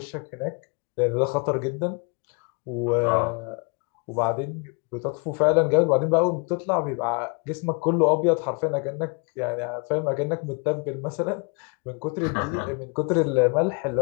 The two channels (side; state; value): right; quieter; 33.1 dB